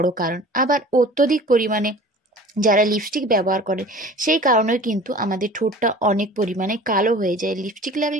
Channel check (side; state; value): both; normal; correlation 0.43